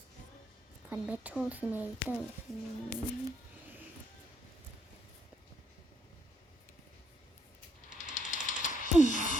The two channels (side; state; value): both; normal; correlation 0.72